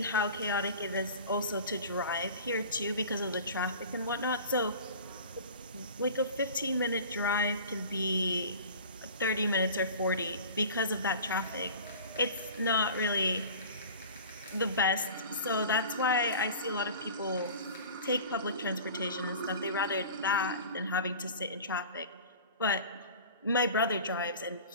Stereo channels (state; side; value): inverted; both; correlation -0.39